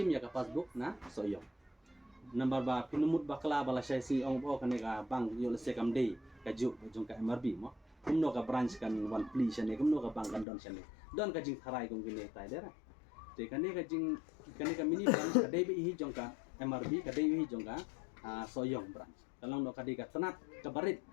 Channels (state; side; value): drops out; right; at 10.5 s